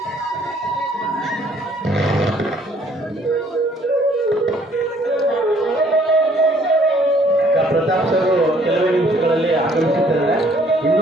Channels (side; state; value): both; normal; correlation 0.62